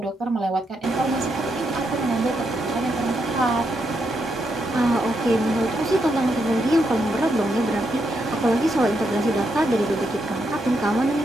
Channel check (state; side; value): normal; both; correlation 0.80